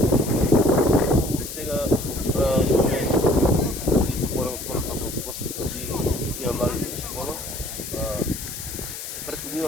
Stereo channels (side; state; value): left; noise; hiss, 9 dB below the sound